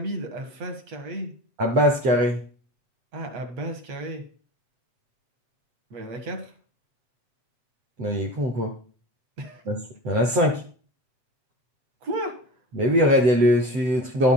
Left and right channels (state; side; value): late; left; 7.9 ms